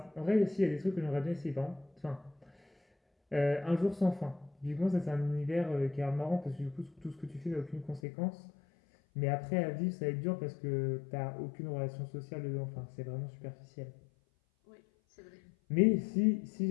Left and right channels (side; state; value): right; drops out; at 8.0 s